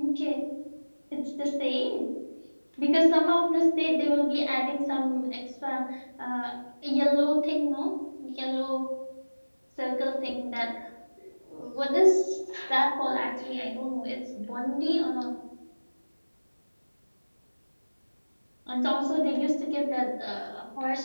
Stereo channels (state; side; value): inverted; both; correlation -1.00